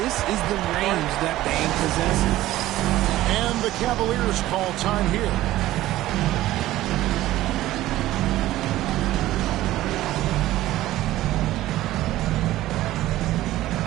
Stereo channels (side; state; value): left; quieter; 15.4 dB